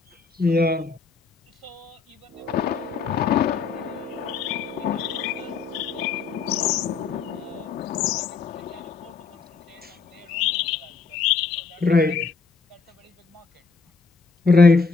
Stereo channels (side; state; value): right; quieter; 4.7 dB